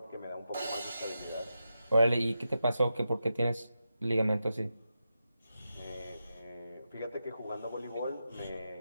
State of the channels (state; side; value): inverted; both; correlation -0.88